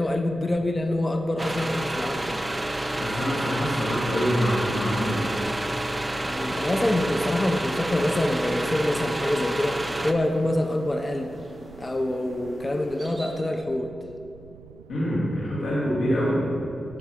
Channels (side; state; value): right; noise; rumble, 20 dB below the sound